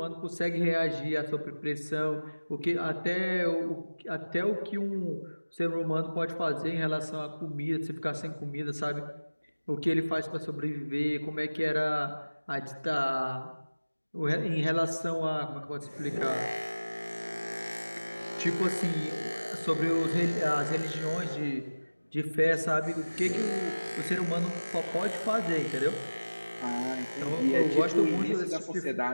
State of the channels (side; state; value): both; inverted; correlation -1.00